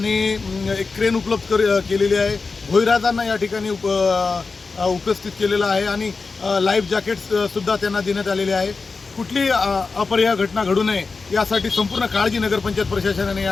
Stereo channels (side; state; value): right; quieter; 4.3 dB